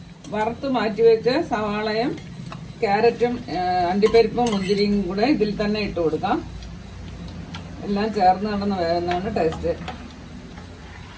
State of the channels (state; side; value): identical; both; correlation 1.00